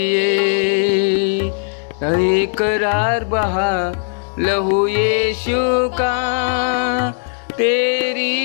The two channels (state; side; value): silent; right; 68 dB below the other